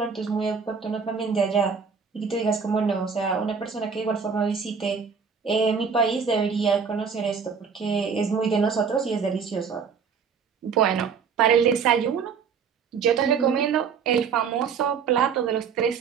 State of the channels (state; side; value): quieter; left; 6.1 dB